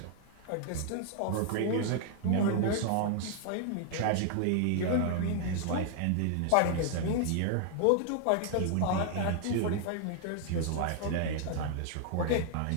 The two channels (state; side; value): different; both; correlation 0.00